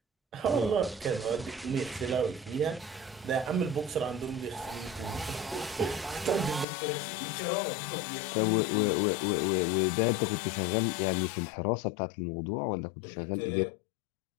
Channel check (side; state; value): right; drops out; at 6.7 s